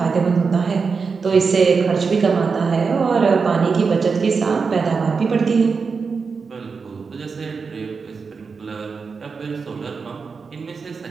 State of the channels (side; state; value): left; quieter; 5.1 dB